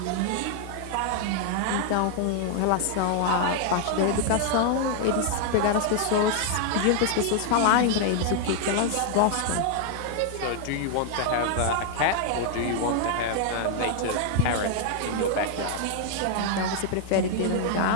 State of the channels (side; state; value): both; different; correlation 0.00